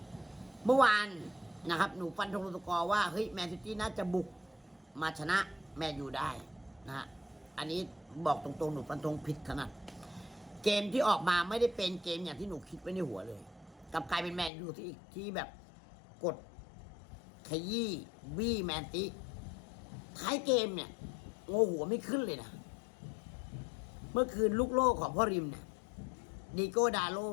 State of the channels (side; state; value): right; drops out; at 14.5 s